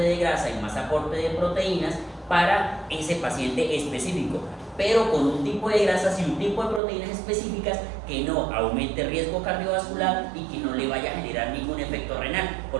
de grasa y más aporte de proteínas para ese paciente específico, pero con un tipo de grasas y un tipo de proteínas específicas que no aumente riesgo cardiovascular y que no le vaya a generar ningún efecto renal,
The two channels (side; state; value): left; drops out; at 6.8 s